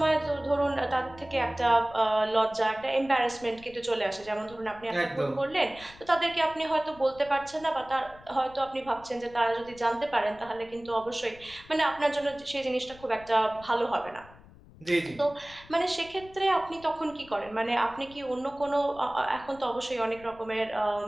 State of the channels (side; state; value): left; noise; rumble, 22 dB below the sound